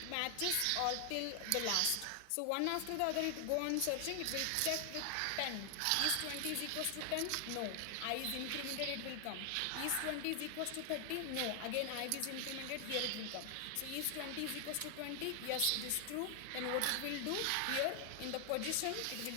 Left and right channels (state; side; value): different; both; correlation 0.00